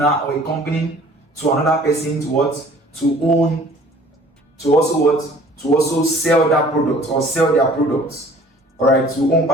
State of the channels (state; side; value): normal; both; correlation 0.51